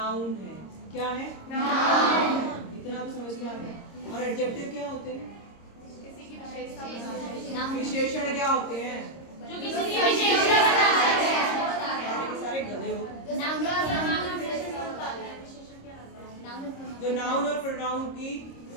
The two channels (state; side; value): late; right; 26 ms